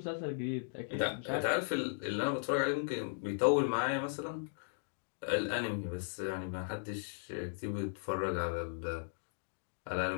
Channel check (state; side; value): silent; right; digital silence